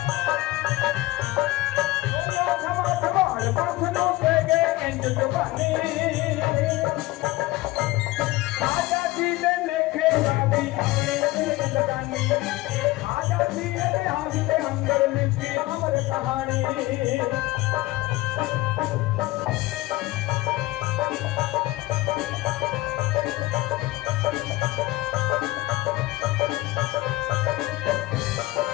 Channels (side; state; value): right; quieter; 19.2 dB